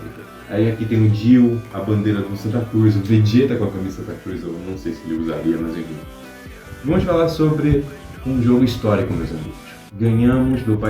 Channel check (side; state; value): both; identical; correlation 1.00